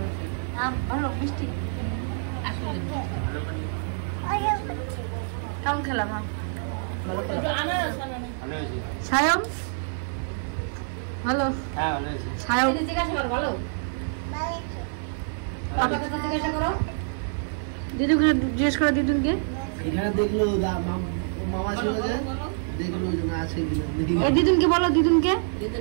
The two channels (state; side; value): silent; left; digital silence